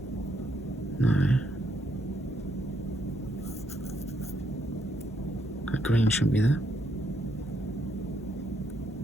no, that green shouldn't be there,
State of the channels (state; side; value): normal; both; correlation 0.75